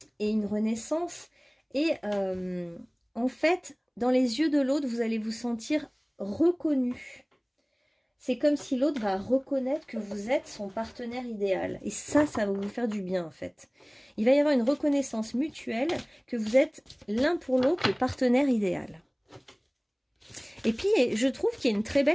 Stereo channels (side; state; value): both; identical; correlation 1.00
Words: et une renaissance. Et en fait, dans les yeux de l'autre, vous allez vous sentir reconnu. C'est comme si l'autre va reconnaître que vous êtes son partenaire idéal. Et ça va vous faire du bien en fait. Il va y avoir une reconnaissance mutuelle que vous êtes l'un pour l'autre le partenaire idéal. Et puis, je trouve qu'il y a une très